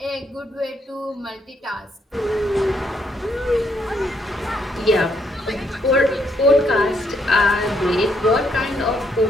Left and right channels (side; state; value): both; normal; correlation 0.73